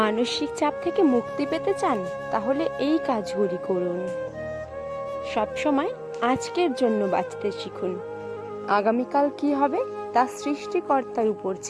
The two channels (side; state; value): both; identical; correlation 1.00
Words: চাপ থেকে মুক্তি পেতে চান, তাহলে এই কাজগুলি করুন। সবসময় আজকের জন্য বাঁচতে শিখুন। আগামীকাল কি হবে তা সৃষ্টিকর্তার উপর